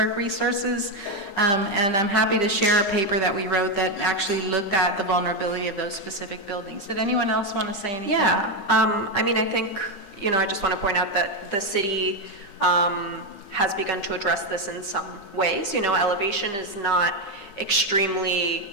resources, and I'm happy to share a paper that we wrote that actually looked at the vulnerability of those specific buildings. Did anyone else want to say anything? Yeah, I think, I just want to point out that the city has begun to address this in some ways. Elevation is not extremely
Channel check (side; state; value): right; late; 9.8 ms